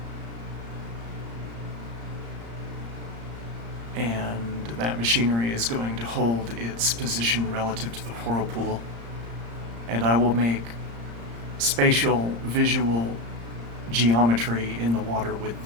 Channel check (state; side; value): late; left; 35 ms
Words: And that machinery is going to hold its position relative to the whirlpool. And I will make spatial, visual geometry in the water with